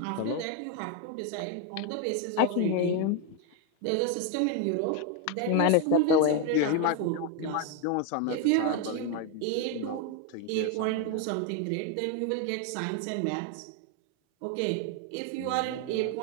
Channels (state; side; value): different; both; correlation 0.01